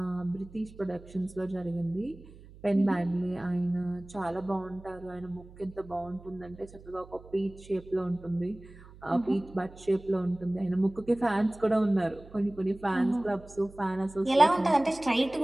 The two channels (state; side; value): noise; right; hum, 20 dB below the sound